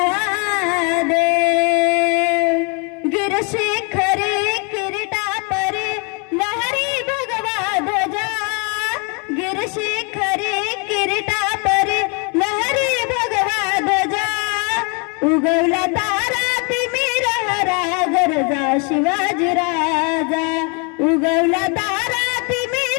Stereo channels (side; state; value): right; quieter; 34.3 dB